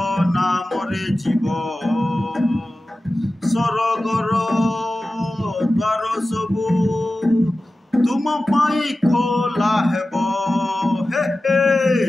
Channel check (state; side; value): normal; both; correlation 0.95